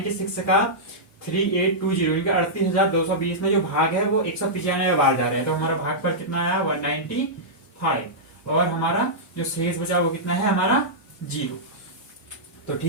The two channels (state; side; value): normal; both; correlation -0.11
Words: का 3820 38,220 में जो भाग है वो 195 बार जा रहे हैं, तो हमारा भाग पर कितना आया 195, और हमारा जो शेष बचा वो कितना है हमारा 0। तो